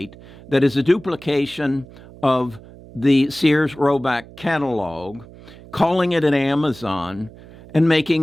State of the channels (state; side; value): noise; right; hum, 20 dB below the sound